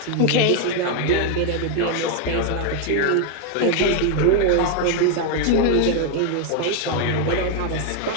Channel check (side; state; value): both; different; correlation 0.00